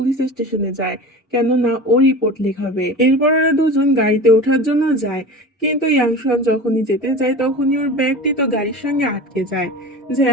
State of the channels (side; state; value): both; normal; correlation 0.33